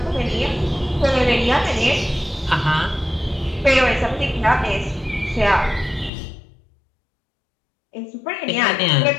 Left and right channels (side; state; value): right; drops out; at 6.1 s